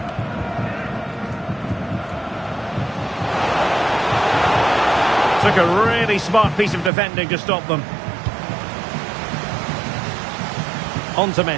Took a really smart piece of defending to stop them. On to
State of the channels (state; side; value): drops out; left; at 6.9 s